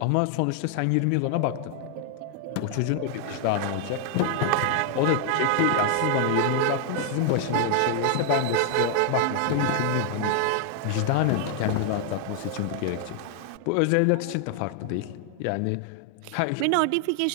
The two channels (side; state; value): both; different; correlation 0.00